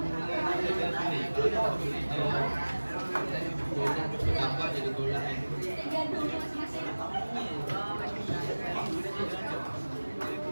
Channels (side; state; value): both; inverted; correlation -1.00